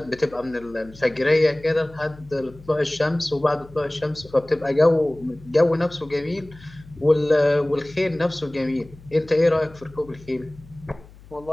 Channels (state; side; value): noise; left; hum, 22 dB below the sound